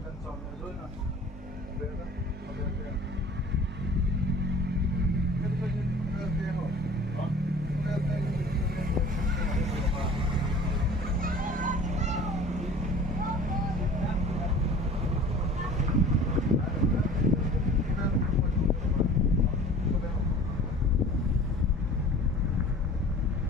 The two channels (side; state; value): both; normal; correlation 0.44